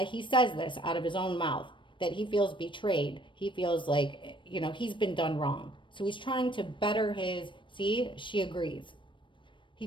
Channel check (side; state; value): right; late; 0.24 ms